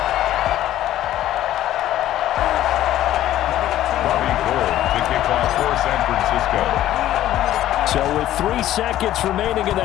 Robbie Gould to kick off for San Francisco. So with 3 seconds remaining in the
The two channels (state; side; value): quieter; right; 13.2 dB